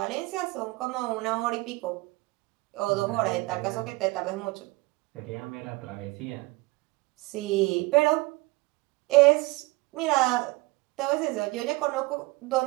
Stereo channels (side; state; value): left; quieter; 22.6 dB